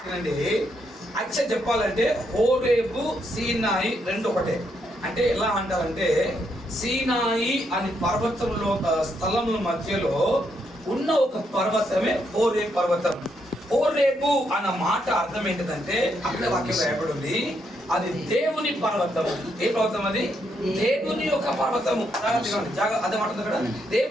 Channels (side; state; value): both; normal; correlation 0.77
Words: యాక్చువల్ చెప్పాలంటే హోరేబు, సీనాయి రెండు ఒకటే. అంటే ఎలా అంటారంటే, సీనాయి అని పర్వతంలో స్థలముల మధ్యలో ఉన్న ఒక పర్వతమే హోరేబు పర్వతం. హోరేబు అన్న మాట అర్థం ఏంటిదంటే, అక్కడ వాక్యం రాయబడి ఉంది, అది దేవుని పర్వతం. ఏ పర్వతం అది? దేవుని యొక్క పర్వతము. అదే మాట కదా,